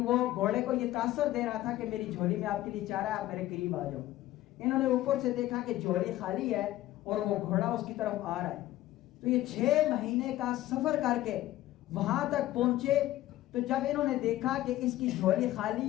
وہ گھوڑے کو یہ تاثر دے رہا تھا کہ میری جھولی میں آپ کے لیے چارہ ہے، آپ میرے قریب آ جاؤ. انہوں نے اوپر سے دیکھا کہ جھولی خالی ہے اور وہ گھوڑا اس کی طرف آ رہا ہے. تو یہ 6 مہینے کا سفر کر کے وہاں تک پہنچے. تو جب انہوں نے دیکھا کہ اس کی جھولی خالی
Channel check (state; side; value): quieter; right; 15.1 dB